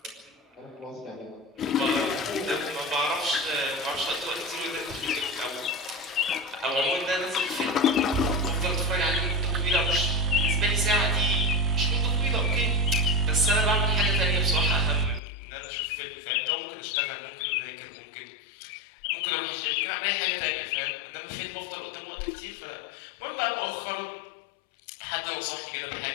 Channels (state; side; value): drops out; right; at 15.2 s